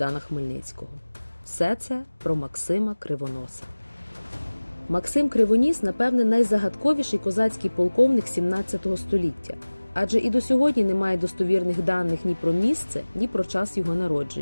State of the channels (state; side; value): inverted; both; correlation -1.00